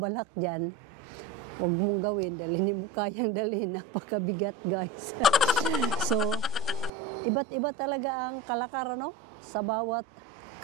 dyan, huwag mong gawin, dahil hindi mo kayang dalhin. Napakabigat, guys. So, iba't iba talaga ang kalakaran, no? Sa bawat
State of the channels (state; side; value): quieter; left; 3.3 dB